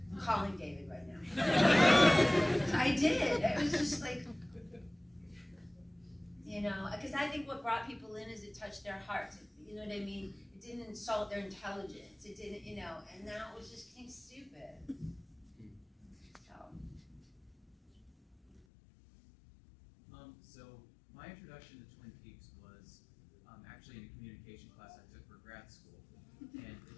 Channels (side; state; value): right; drops out; at 18.7 s